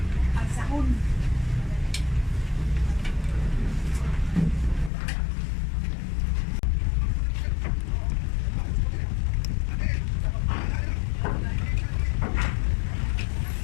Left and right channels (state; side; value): drops out; right; at 4.9 s